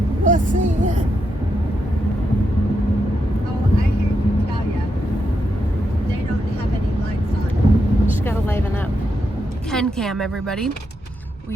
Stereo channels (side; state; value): both; normal; correlation 0.83